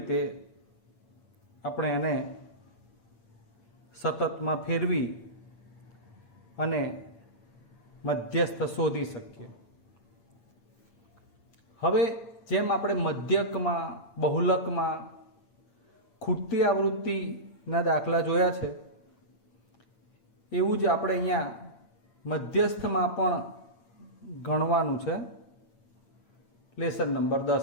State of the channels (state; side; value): late; right; 8.7 ms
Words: આપણે એને સતતમાં ફેરવી અને મધ્યસ્થ શોધી શકીએ. હવે જેમ આપણે મધ્યકમાં, બહુલકમાં ખૂટતી આવૃત્તિના દાખલા જોયા છે, એવું જ આપણે અહીંયા મધ્યસ્થમાં પણ ગણવાનું છે લેસન નંબર